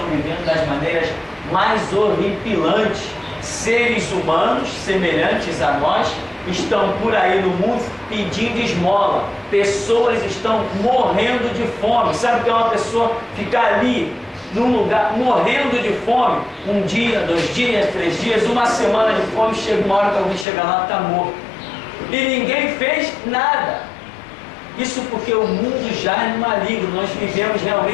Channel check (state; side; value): drops out; right; at 20.5 s